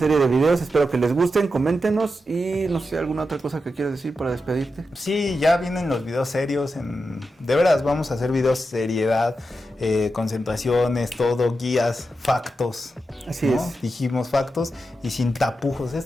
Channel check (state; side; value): normal; both; correlation 0.88